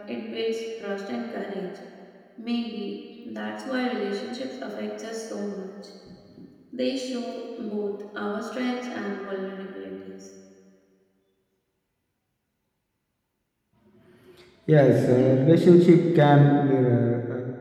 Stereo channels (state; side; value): identical; both; correlation 1.00